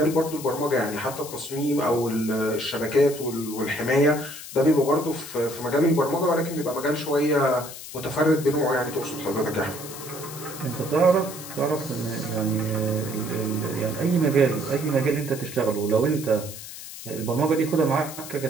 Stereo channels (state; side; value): noise; left; hiss, 12 dB below the sound